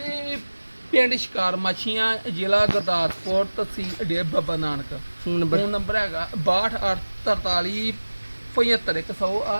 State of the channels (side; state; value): both; inverted; correlation -1.00